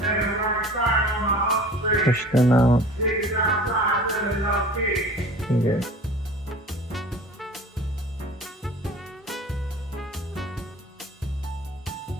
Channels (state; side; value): normal; both; correlation 0.42